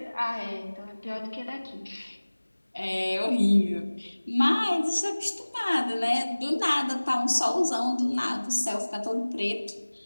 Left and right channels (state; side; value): inverted; both; correlation -1.00